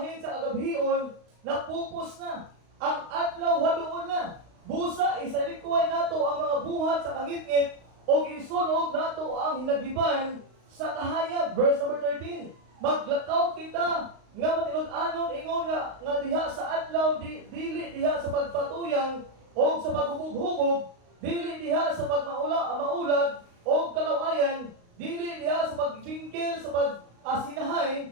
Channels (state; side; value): late; left; 35 ms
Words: sa agabhion, napupos na. Ang adlaw haduol na. Busa, isalikuay nato ang mga buhat sa kangitngit, o isunog nato ang hinagiban sa kahayag. Verse number 13, maglakaw kita, nga matinud-anon ingon nga diha sa adlaw dili diha sa pagpatuyang o sa paghubog-hubog, dili diha sa maulag o kalawayan, dili diha sa pagbingkil sa